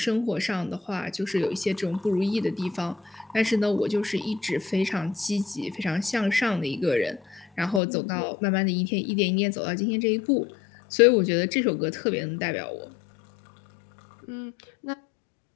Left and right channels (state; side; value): drops out; right; at 7.8 s